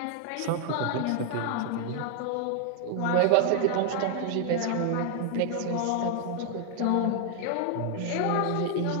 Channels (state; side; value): different; both; correlation 0.00